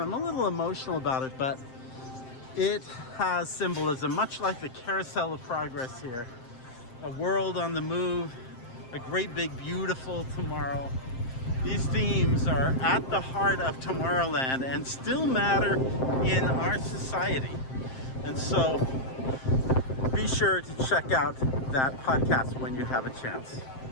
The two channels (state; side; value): late; right; 7.6 ms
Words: a little emotional about it, but it has symbolism, much like the Carousel of Progress here. A world on the move, a great big beautiful tomorrow. These themes are at the heart of Tomorrowland and still matter in our society. And so be sure to check out that podcast when you have a chance.